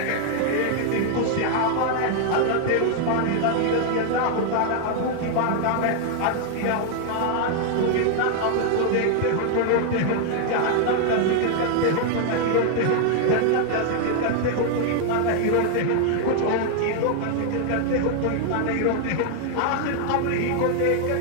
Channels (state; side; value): different; both; correlation 0.00